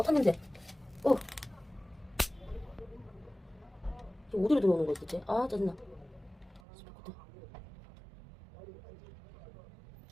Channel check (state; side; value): drops out; left; at 6.6 s